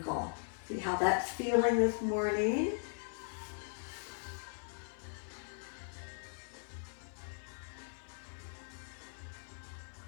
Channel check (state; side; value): silent; right; 52 dB below the other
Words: See how that's feeling this morning?